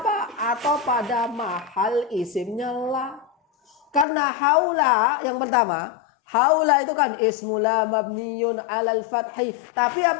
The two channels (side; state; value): right; drops out; at 4.0 s